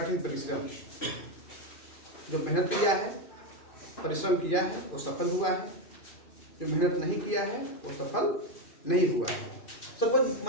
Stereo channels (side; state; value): right; late; 2.4 ms